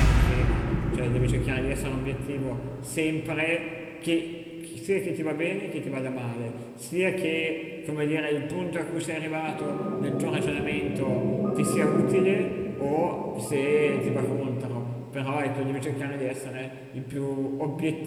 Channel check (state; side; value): identical; both; correlation 1.00